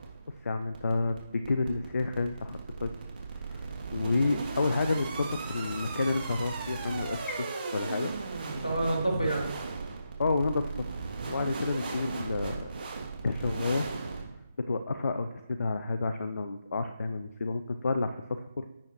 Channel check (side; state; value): both; inverted; correlation -0.85